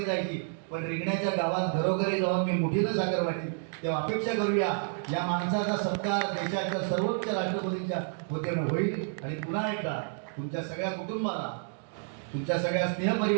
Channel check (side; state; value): left; silent; digital silence